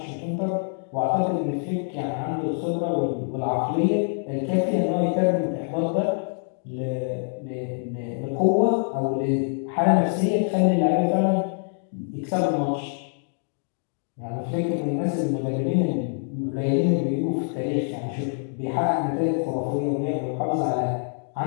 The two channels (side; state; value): right; silent; 62 dB below the other